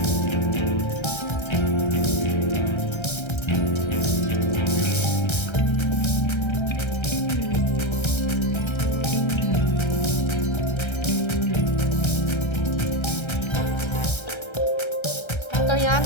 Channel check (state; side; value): late; right; 1.3 ms